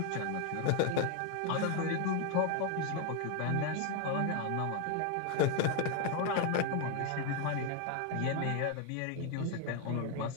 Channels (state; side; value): different; both; correlation 0.01